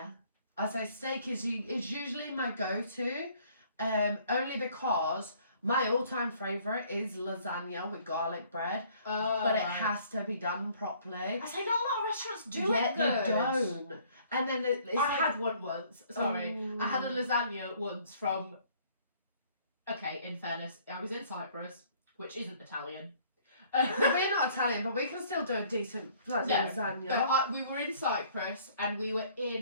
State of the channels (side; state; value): both; inverted; correlation -0.59